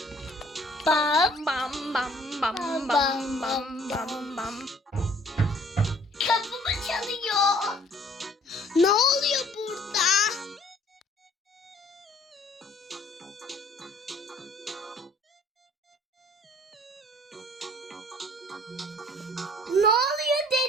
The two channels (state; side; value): normal; both; correlation 0.56